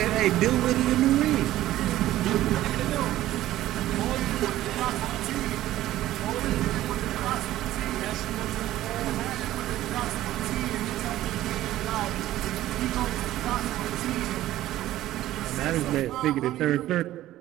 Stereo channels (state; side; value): quieter; left; 14.5 dB